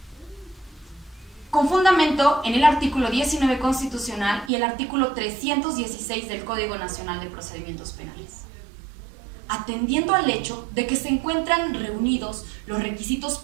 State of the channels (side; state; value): left; drops out; at 4.5 s